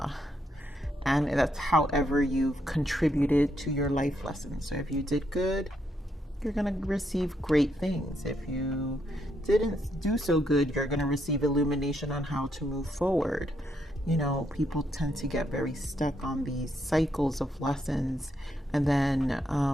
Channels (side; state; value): both; normal; correlation 0.77